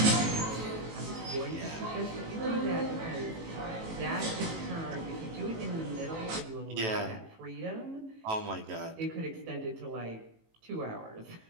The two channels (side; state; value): left; late; 18 ms